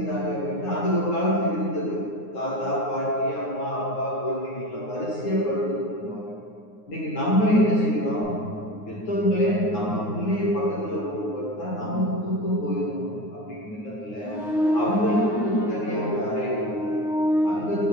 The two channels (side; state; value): right; late; 9.6 ms